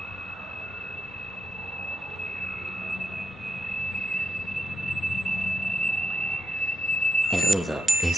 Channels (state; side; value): normal; both; correlation 0.86